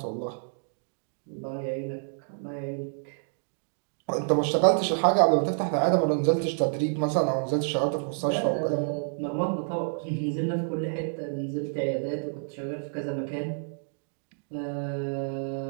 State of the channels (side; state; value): left; silent; digital silence